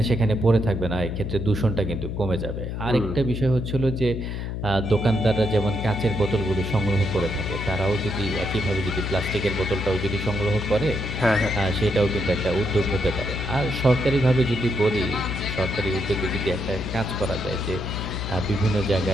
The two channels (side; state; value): left; noise; hum, 4 dB below the sound